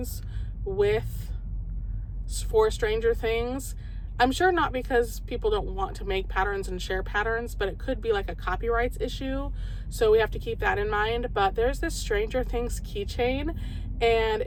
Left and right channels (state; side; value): identical; both; correlation 1.00